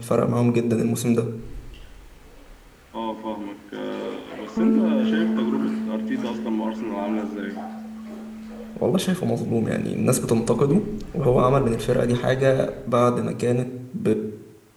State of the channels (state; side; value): identical; both; correlation 1.00